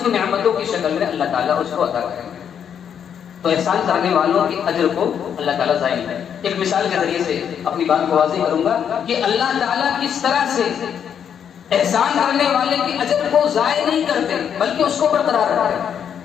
کی نعمتوں کی شکل میں اللہ تعالیٰ اس کو عطا کریں گے۔ تو احسان کرنے والوں کے اجر کو اللہ تعالیٰ ضائع نہیں کرے۔ ایک مثال کے ذریعے سے اپنی بات کو واضح کروں گا کہ اللہ تعالیٰ کس طرح سے احسان کرنے والے کے اجر کو ضائع نہیں کرتے بلکہ اس کو برقرار رکھتے ہیں۔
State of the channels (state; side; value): quieter; right; 8.3 dB